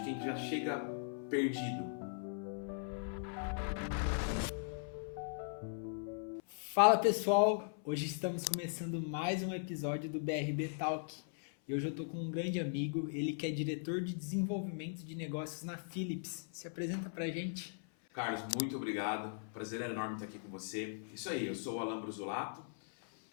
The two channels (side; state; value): right; silent; 52 dB below the other